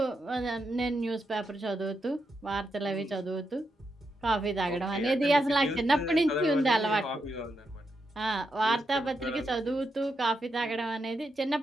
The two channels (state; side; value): normal; both; correlation 0.84